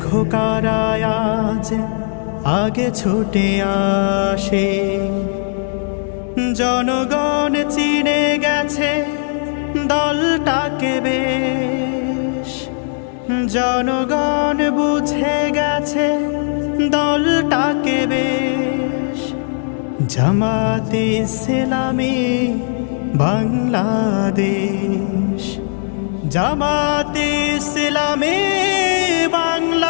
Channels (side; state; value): right; silent; 59 dB below the other